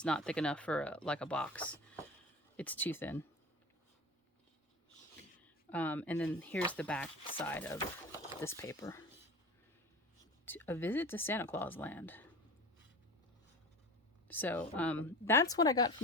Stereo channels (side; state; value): both; normal; correlation 0.34